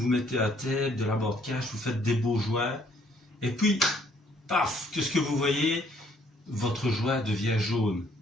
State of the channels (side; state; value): both; normal; correlation 0.65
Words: mettez un tape, de la bande cache, vous faites des beaux joints, et puis, paf, qu'est-ce que vous voyez? Votre joint devient jaune.